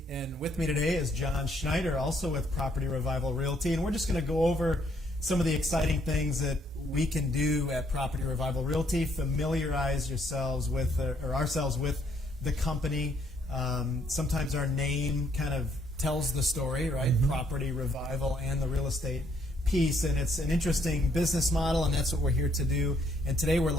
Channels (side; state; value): both; normal; correlation 0.69